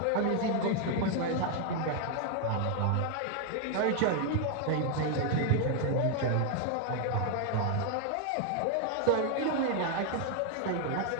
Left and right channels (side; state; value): both; different; correlation 0.00